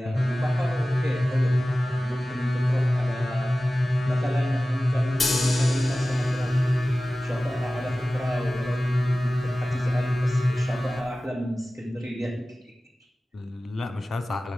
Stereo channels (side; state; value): both; normal; correlation 0.96